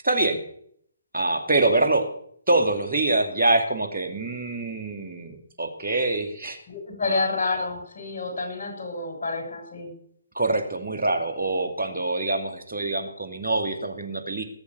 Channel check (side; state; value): both; inverted; correlation -0.69